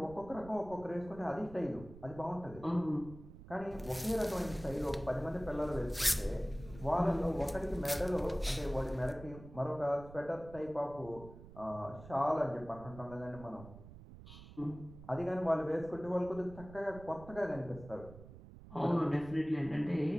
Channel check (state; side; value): noise; right; rumble, 16 dB below the sound